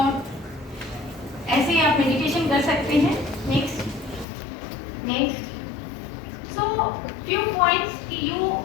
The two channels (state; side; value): drops out; right; at 4.2 s